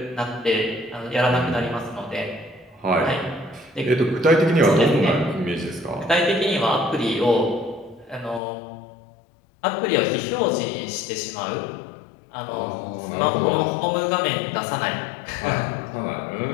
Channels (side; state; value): right; drops out; at 8.4 s